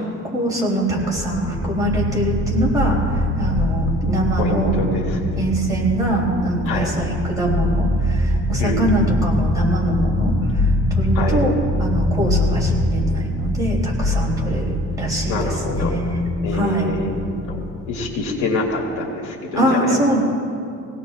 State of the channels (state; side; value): normal; both; correlation 0.50